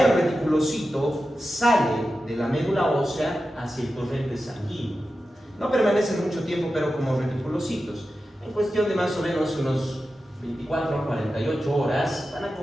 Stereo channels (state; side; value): normal; both; correlation 0.92